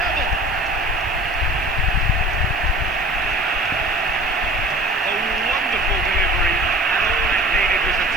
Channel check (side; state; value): right; noise; hiss, 26 dB below the sound